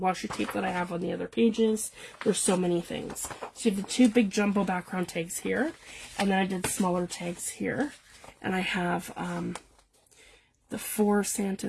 tape that I have on the other pages. There's so many things. So you have the 2 big jumbo background tags here, and then I did smaller tags here, and I have the 4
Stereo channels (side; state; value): both; identical; correlation 1.00